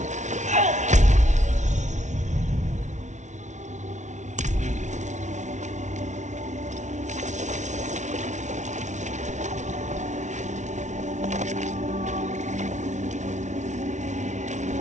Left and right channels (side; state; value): left; late; 0.35 ms